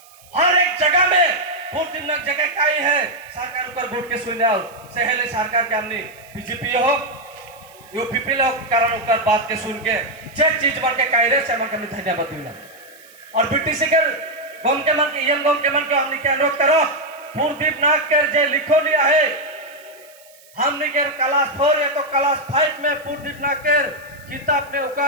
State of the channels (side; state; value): right; noise; hiss, 25 dB below the sound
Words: हर एक जगह में पोर्टिव नाक जगह काई है सरकार ऊपर बोर्ड के सुने आओ सहेले सरकार के हमने बीजेपी हो यूपीपी लोग कारण ऊपर बात के सुन के जे चीज बन के काई रे से मन के धन्यवाद दिला और बीटीसी के गम के मन के एम गम के मन के हमने के अनुरोध करो पोर्टिव नाक के जे लिखो लिया है हमने के क्लास 4 या तो क्लास 5 में पोर्टिव नाक के किताब में